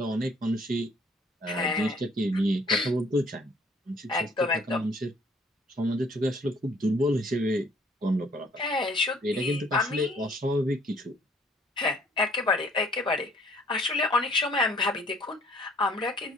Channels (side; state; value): both; normal; correlation 0.59